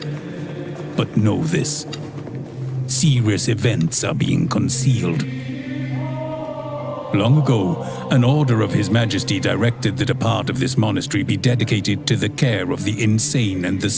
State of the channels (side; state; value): both; identical; correlation 1.00